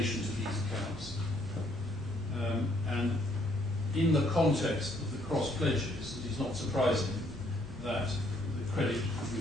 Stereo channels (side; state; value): both; normal; correlation 0.67